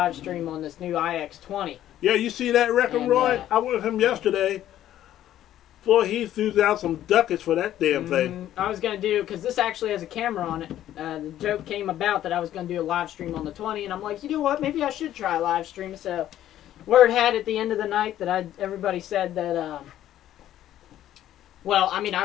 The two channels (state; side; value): quieter; right; 12.3 dB